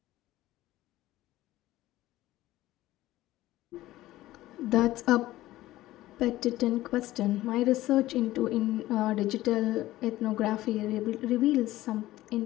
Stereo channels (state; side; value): quieter; right; 16.1 dB